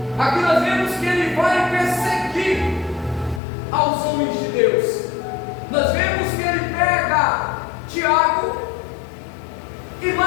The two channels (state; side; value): drops out; right; at 3.4 s